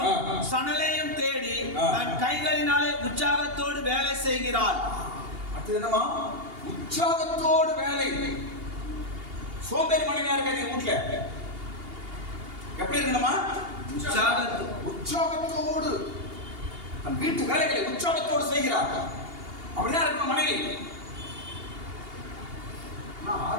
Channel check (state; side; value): late; left; 2.8 ms